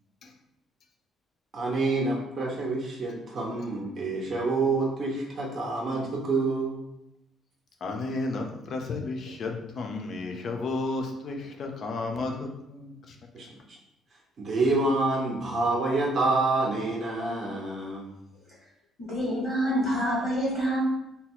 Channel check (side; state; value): both; normal; correlation 0.66